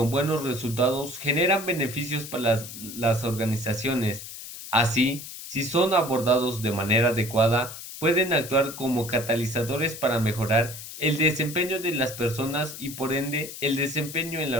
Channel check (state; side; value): noise; left; hiss, 11 dB below the sound